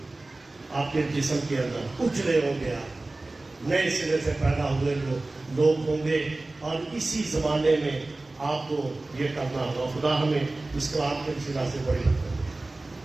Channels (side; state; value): left; quieter; 3.0 dB